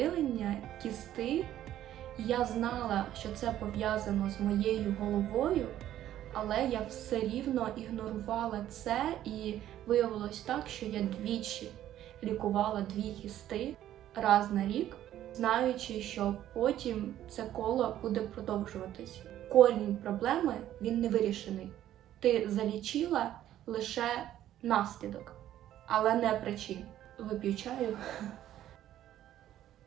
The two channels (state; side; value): quieter; left; 12.3 dB